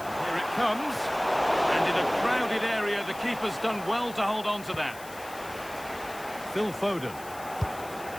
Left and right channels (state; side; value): noise; left; hiss, 17 dB below the sound